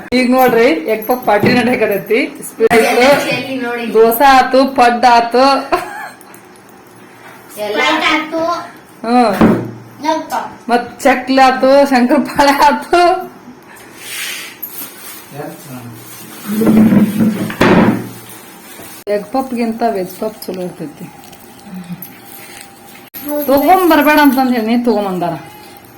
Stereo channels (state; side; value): identical; both; correlation 1.00